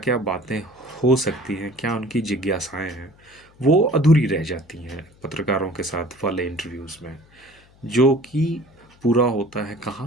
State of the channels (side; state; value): left; noise; hum, 29 dB below the sound